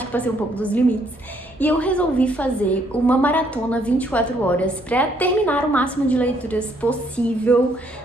que passei um pouco dos limites. E eu resolvi fazer uma maratona 24 horas para terminar o máximo de leituras possível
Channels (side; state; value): both; normal; correlation 0.68